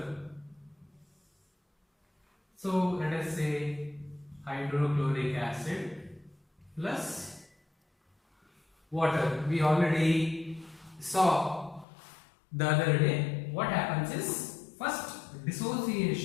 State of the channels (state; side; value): drops out; right; at 11.9 s